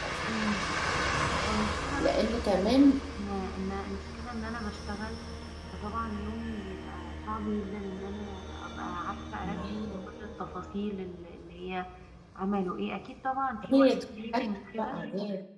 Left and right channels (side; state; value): both; identical; correlation 1.00